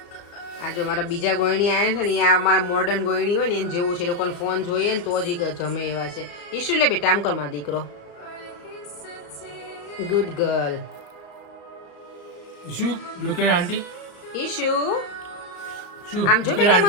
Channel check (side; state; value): right; late; 35 ms